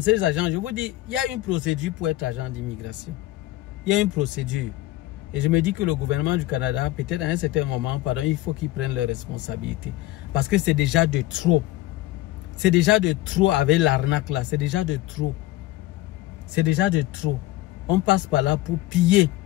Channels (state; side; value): quieter; right; 16.4 dB